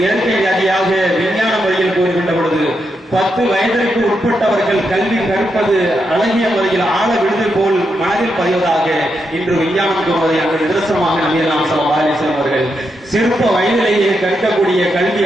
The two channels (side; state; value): both; normal; correlation 0.83